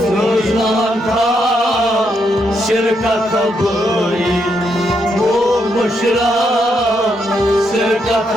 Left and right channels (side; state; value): both; normal; correlation 0.78